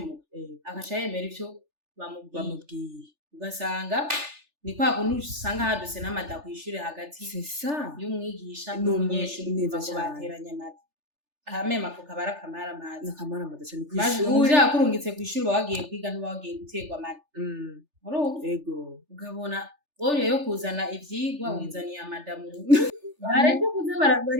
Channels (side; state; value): left; late; 3.4 ms